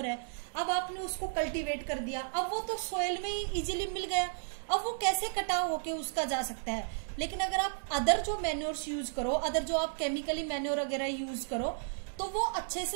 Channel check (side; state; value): left; silent; 55 dB below the other